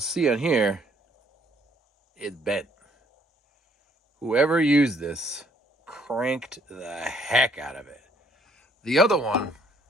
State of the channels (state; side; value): normal; both; correlation 0.65